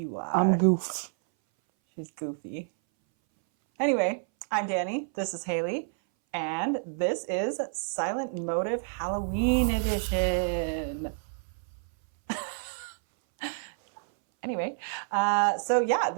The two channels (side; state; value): left; silent; 59 dB below the other